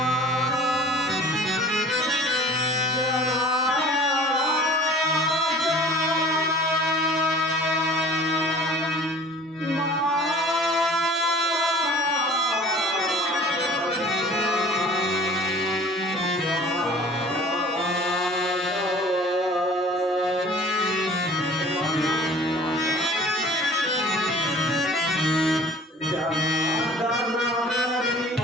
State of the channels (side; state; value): both; normal; correlation 0.47